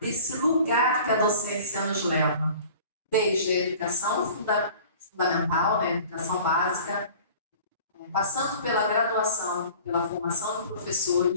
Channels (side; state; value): both; inverted; correlation -0.45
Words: lugar que a docência nos leva, desde a educação fundamental, né, educação básica, passando pela graduação, pela formação de